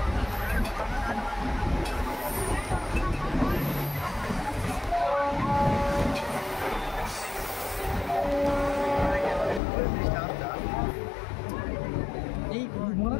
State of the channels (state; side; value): drops out; right; at 9.6 s